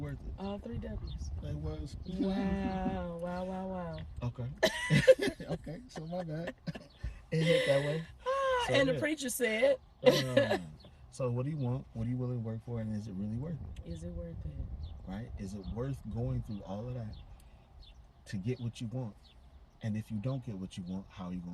it? All 3 W's. It was. Wow. Okay. Okay, so my bad. It hit that way. And the preacher said. So what do you want? What are you willing to work for? And is it really worth it? Is it worth it? Right? Is it worth going through all of that to get what you want? And if you don't get what you want, how are you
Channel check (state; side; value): identical; both; correlation 1.00